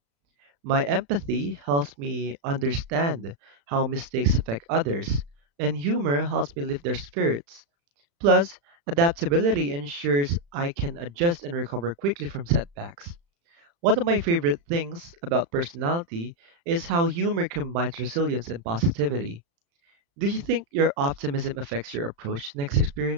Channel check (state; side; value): late; left; 35 ms